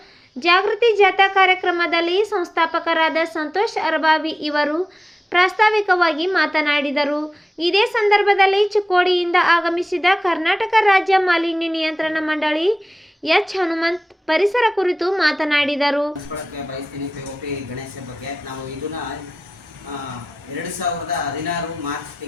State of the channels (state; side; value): normal; both; correlation 0.95